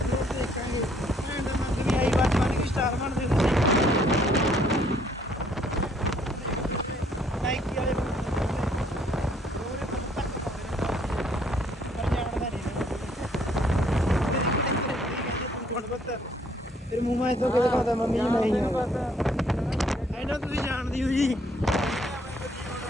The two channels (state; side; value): normal; both; correlation 0.65